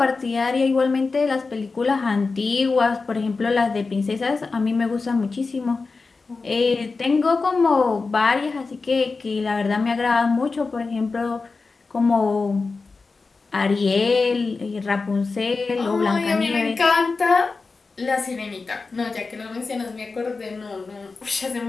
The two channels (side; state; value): right; quieter; 4.1 dB